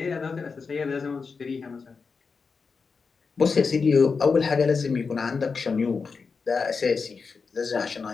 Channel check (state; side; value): quieter; right; 5.0 dB